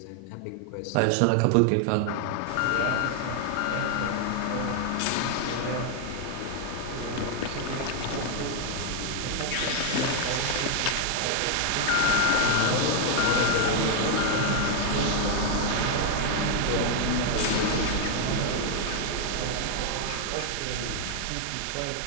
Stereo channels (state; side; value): different; both; correlation 0.00